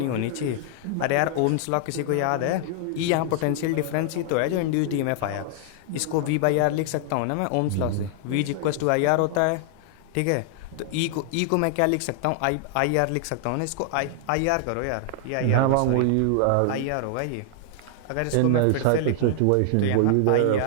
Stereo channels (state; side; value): different; both; correlation 0.00